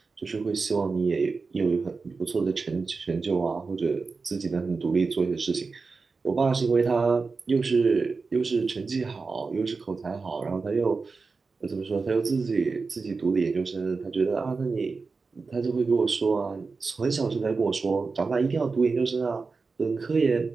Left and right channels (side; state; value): left; quieter; 4.4 dB